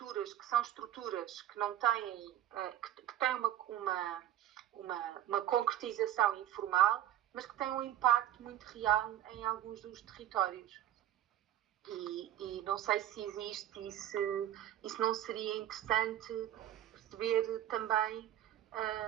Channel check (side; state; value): left; quieter; 12.0 dB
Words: que são estruturas que não têm, que têm uma concretização informal, mas que têm um impacto muito real em alguns dos territórios. E não sei se existe e se não seria interessante perceber também